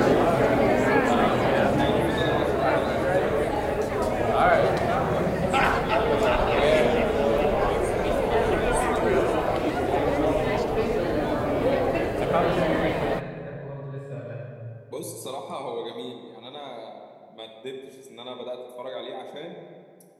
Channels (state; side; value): identical; both; correlation 1.00